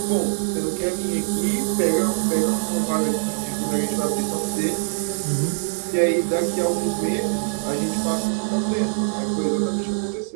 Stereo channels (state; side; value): silent; left; digital silence